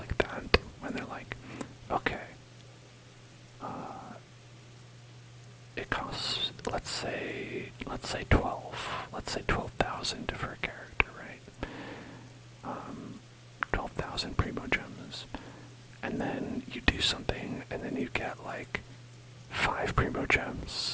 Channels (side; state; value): both; identical; correlation 1.00